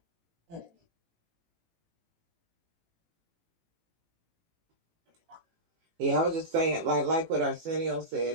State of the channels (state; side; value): late; left; 18 ms